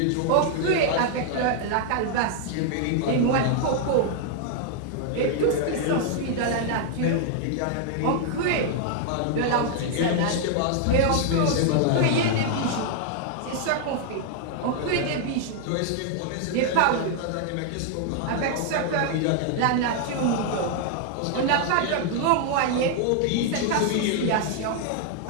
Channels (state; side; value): different; both; correlation 0.00